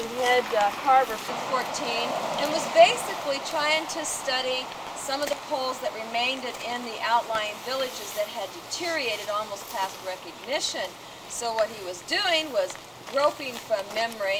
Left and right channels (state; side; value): identical; both; correlation 1.00